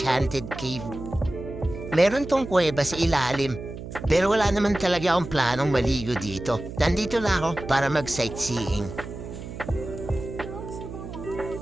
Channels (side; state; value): right; noise; hum, 10 dB below the sound